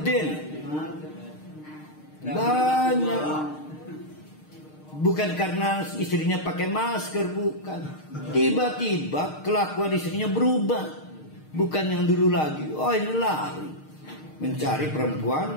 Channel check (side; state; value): right; late; 6.5 ms